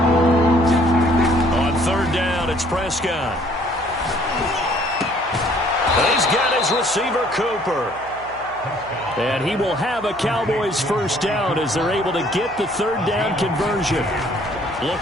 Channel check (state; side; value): noise; right; hum, 21 dB below the sound